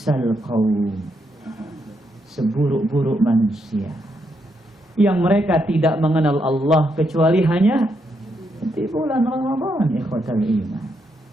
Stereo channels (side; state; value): both; normal; correlation 0.79